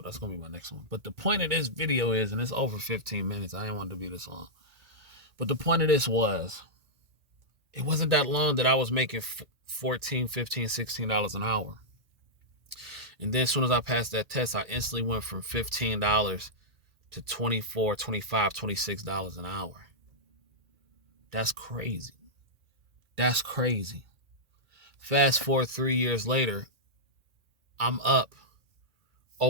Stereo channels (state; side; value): late; left; 1.9 ms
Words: that's gonna be my next one. But the point of this video is, and it's over 15 minutes. I didn't want it to be this long. But the point of this was, it wasn't that long that I was making $14, $15, $16 an hour. And then as soon as I passed that test, I instantly went from $15 to $24, $25, $26 an hour. That's crazy. That's crazy. Fast forward 3 years later, I'm up